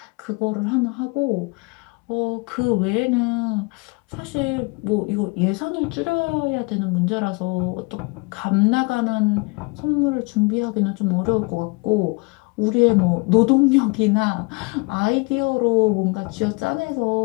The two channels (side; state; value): right; quieter; 28.7 dB